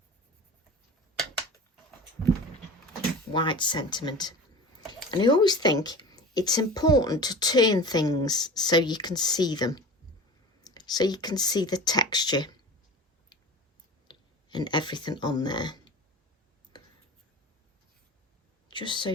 white sentiment, and I always think it's important to turn things so you can see them, so you can see the texture and everything on there, just so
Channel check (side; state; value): both; normal; correlation 0.35